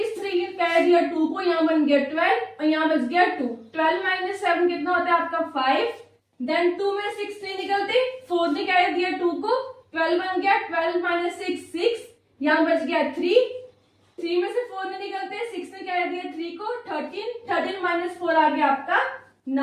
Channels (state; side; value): identical; both; correlation 1.00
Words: 3 ने कह दिया 2 को, यहाँ बन गया 12 और यहाँ बच गया 2। 12 माइनस 7 कितना होता है आपका? 5। देन 2 में 6 नहीं निकलते, 4 ने कह दिया 2 को, 12 बन गया। 12 माइनस 6 6, यहाँ बच गया 3। 3 में से 4 नहीं निकलते, 6 ने कह दिया 3 को, 13। 13 माइनस 4 आ गया आपका